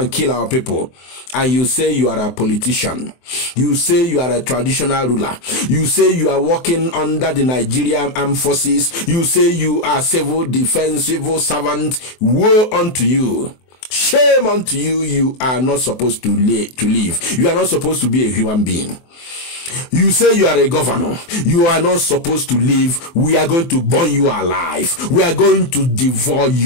kill our people. And you say you are a politician, you say you are a traditional ruler, you say you are working under the Nigerian armed forces, you say you are civil defense, civil servant. Woe unto you. Shame unto you. You are not supposed to live. You are not supposed to be a human being. You say you are a governor. You are not supposed to live. We are going to burn you alive. We are going to devour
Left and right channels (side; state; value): right; late; 23 ms